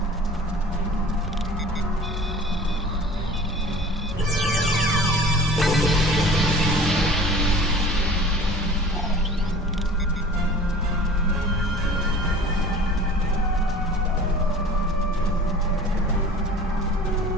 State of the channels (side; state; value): both; normal; correlation 0.43